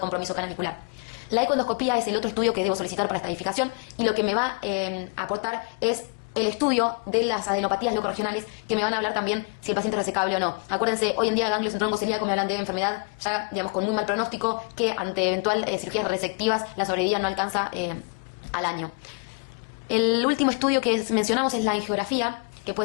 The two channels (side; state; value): right; quieter; 32.1 dB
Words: canalicular. La ecoendoscopía es el otro estudio que debo solicitar para estadificación y lo que me va a aportar es el estudio de las adenopatías locorregionales, que me van a hablar también si el paciente es resecable o no. Acuérdense, hoy en día ganglios en tronco celíaco me hablan de enfermedad ya, digamos, con muy mal pronóstico, que ante eventual cirugías resectivas la sobrevida no alcanza al año. El último estudio que mencionamos es la angiografía, que